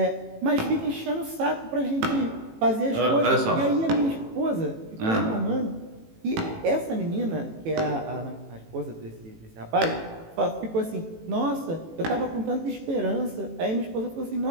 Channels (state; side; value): late; left; 18 ms